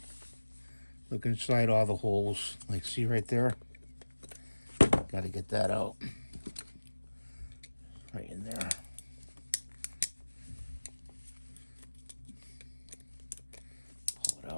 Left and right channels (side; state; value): both; inverted; correlation -1.00